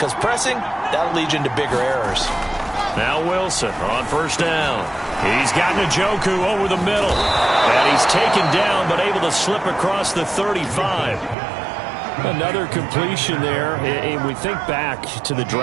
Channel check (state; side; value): drops out; left; at 11.4 s